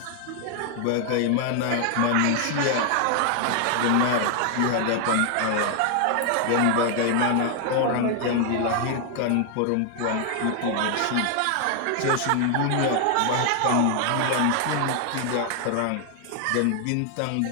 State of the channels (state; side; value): different; both; correlation 0.00